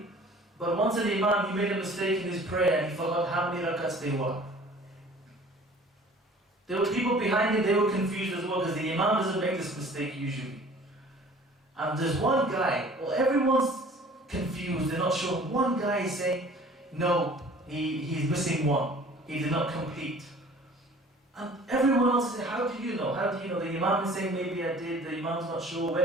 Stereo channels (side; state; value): both; normal; correlation 0.49